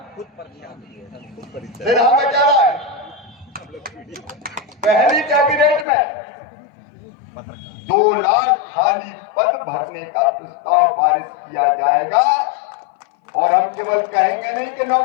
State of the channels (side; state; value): right; drops out; at 5.9 s